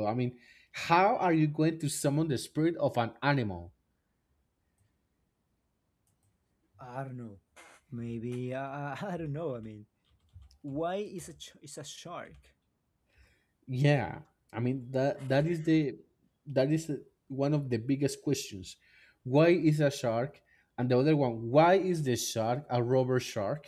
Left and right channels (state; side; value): identical; both; correlation 1.00